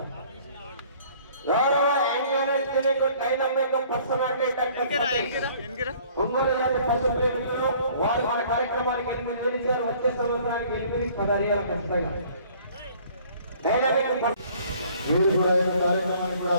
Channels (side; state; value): both; inverted; correlation -0.55